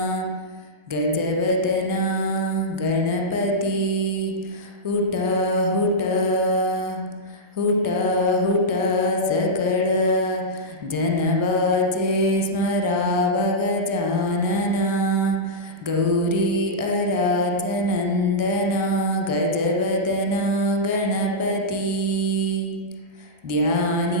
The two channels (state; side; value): late; left; 1.3 ms